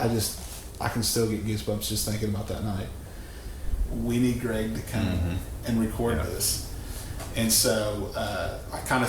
can still get goosebumps just thinking about that night. We need Greg to come and record this. And so I kind of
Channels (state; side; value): identical; both; correlation 1.00